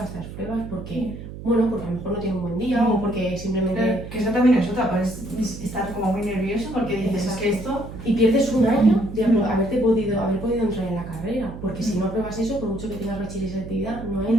estas pruebas porque, bueno, porque a lo mejor no tiene un buen día o porque simplemente... Claro, que eso también es otra, puedes estar como muy nervioso porque dices, es que esto... Y pierdes un año de haber podido entrar en la carrera, porque si no apruebas eso, por mucho que tengas bachiller y selectividad, no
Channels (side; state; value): right; noise; hum, 11 dB below the sound